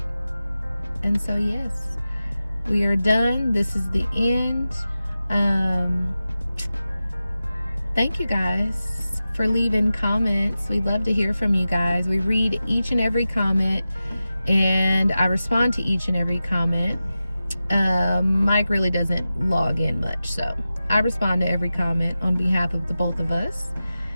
And so yes, we are done. This is the end. Thank you guys for leaving comments. We love to hear from you guys. We read each and every comment, and I respond to each and every comment. Mike really doesn't log in much, so I respond to every comment on behalf of the both of us.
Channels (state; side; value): inverted; both; correlation -0.94